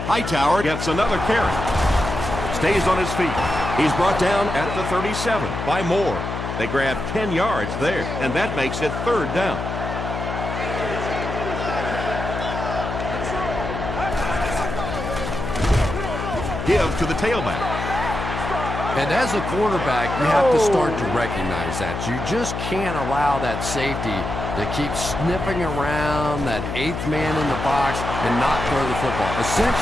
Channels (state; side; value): noise; left; hum, 5 dB below the sound